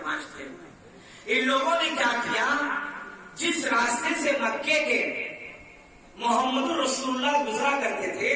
تھے۔ ان لوگوں نے کیا کیا، جس راستے سے مکے کے محمد رسول اللہ گزرا کرتے تھے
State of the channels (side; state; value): both; identical; correlation 1.00